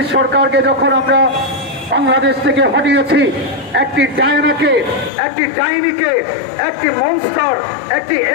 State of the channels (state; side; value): drops out; right; at 5.1 s